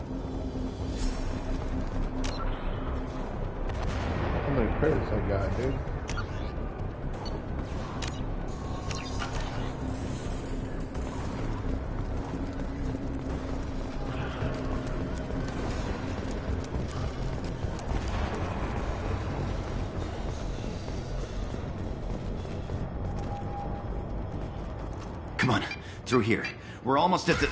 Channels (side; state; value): both; identical; correlation 1.00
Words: How many credits I got, dude? Come on, through here. We're almost at the...